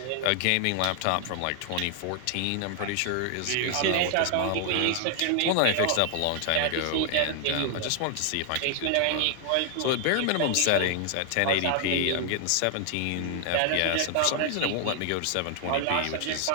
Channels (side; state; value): both; different; correlation 0.00